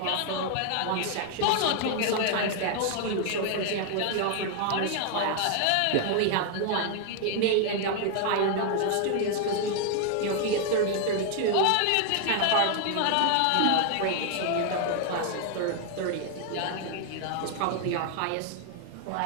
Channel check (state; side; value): different; both; correlation 0.00